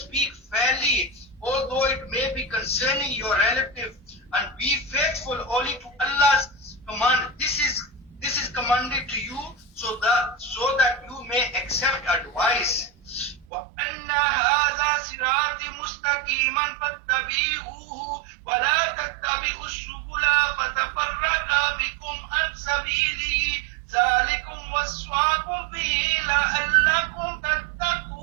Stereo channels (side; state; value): left; drops out; at 13.5 s